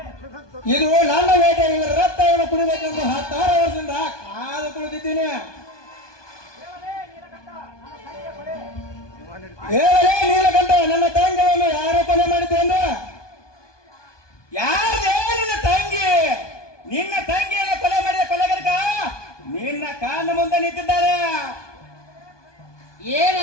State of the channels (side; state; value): right; late; 1.2 ms